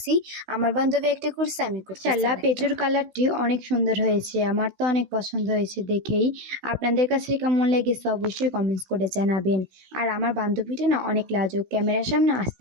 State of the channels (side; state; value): left; late; 16 ms